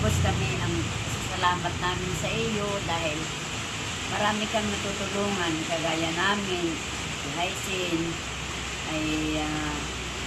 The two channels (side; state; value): both; identical; correlation 1.00